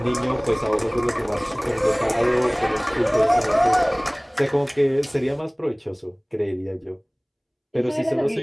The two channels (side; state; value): both; identical; correlation 1.00